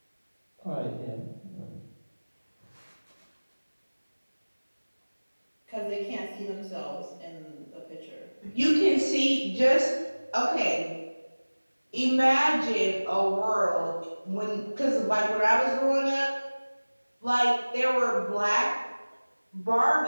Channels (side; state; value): both; inverted; correlation -1.00